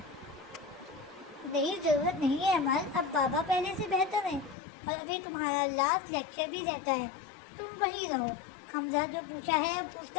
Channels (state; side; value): drops out; right; at 4.5 s